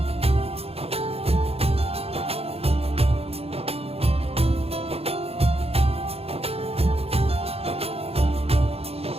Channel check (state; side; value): late; left; 0.29 ms